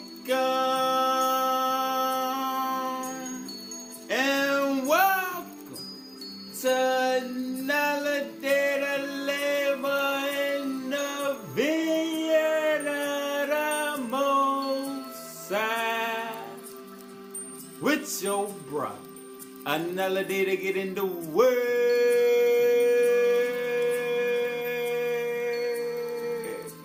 And welcome to another day to labor in the vineyard of the Most High. With your brother. Another day to get in the word.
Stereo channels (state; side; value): identical; both; correlation 1.00